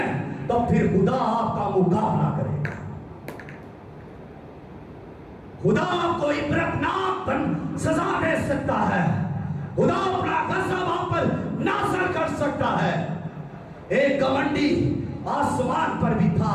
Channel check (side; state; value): both; identical; correlation 1.00